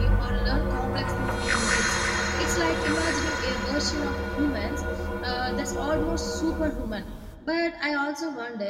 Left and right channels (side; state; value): both; identical; correlation 1.00